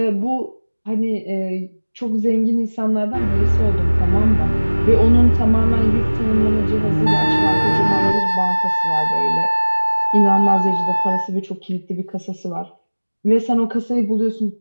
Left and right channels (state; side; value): inverted; both; correlation -1.00